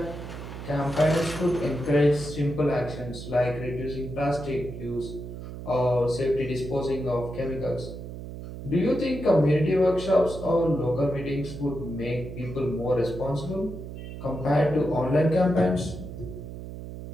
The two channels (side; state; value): right; noise; hum, 10 dB below the sound